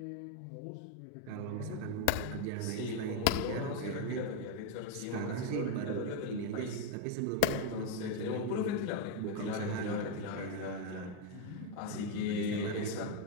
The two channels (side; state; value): both; different; correlation 0.01